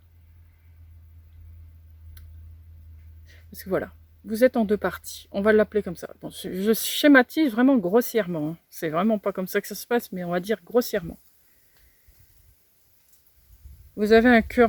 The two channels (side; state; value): both; identical; correlation 1.00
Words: Parce que voilà, vous êtes en 2 parties. On va l'appeler comme ça. Bon, je schématise vraiment grossièrement. Hein. C'est vraiment pas comme ça que ça se passe, mais on va dire grossièrement. Vous avez un